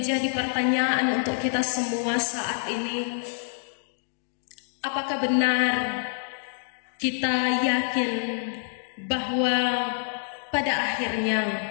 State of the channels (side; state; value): right; silent; 60 dB below the other